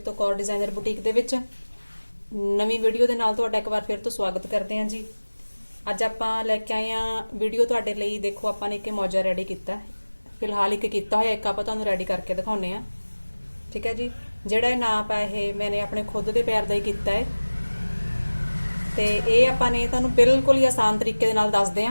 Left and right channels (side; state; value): both; inverted; correlation -1.00